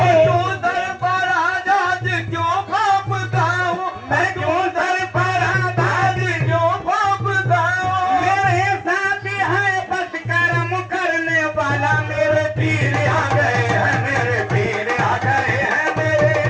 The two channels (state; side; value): identical; both; correlation 1.00